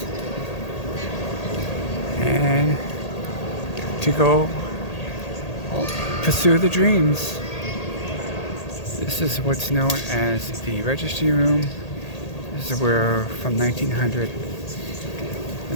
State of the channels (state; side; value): late; right; 1.8 ms